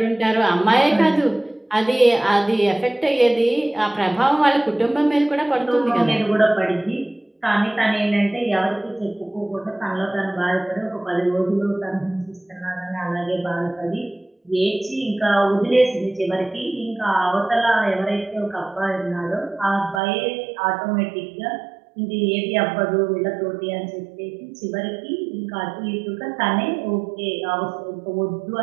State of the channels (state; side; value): drops out; left; at 20.0 s